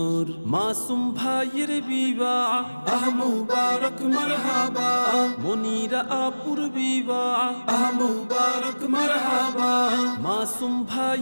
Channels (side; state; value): both; inverted; correlation -1.00